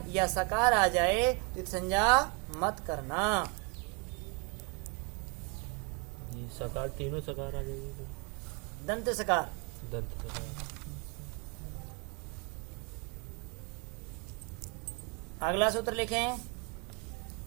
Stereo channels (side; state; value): left; quieter; 32.1 dB